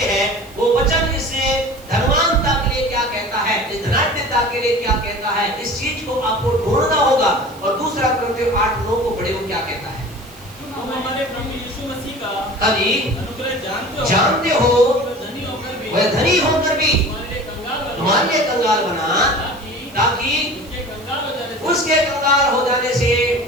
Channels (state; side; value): noise; right; hiss, 23 dB below the sound